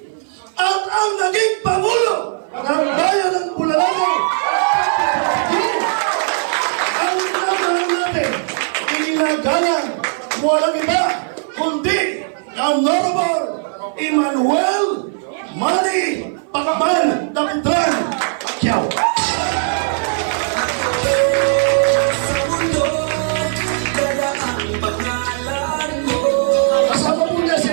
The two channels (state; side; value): silent; left; 56 dB below the other